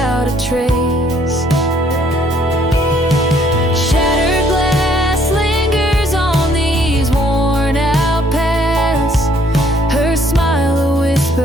a trace. Shattered glass lingers on these worn out paths, her smile a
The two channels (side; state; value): both; normal; correlation 0.64